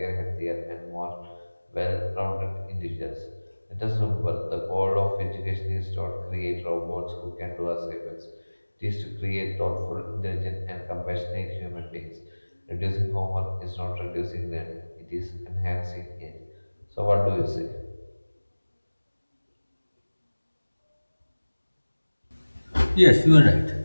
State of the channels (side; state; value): both; inverted; correlation -1.00